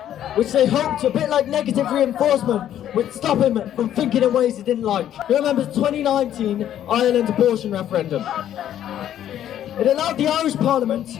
which they hoped, a bit like negative reinforcement, would stop him from thinking in ways he didn't like. He remembers the 2019 Ireland abortion referendum. It allowed the Irish Parliament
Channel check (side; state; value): right; quieter; 11.1 dB